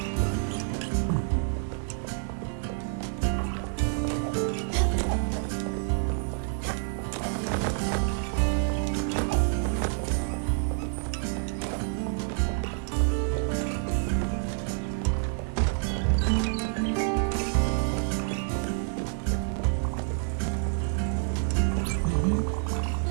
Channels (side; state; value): left; silent; 59 dB below the other